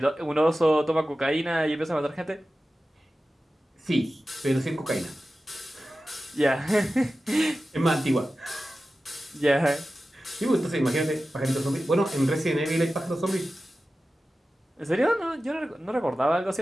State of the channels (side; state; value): both; normal; correlation 0.94